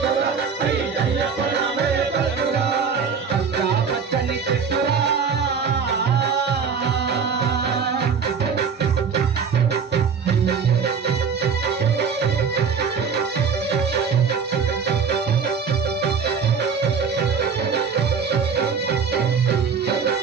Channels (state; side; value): quieter; left; 6.1 dB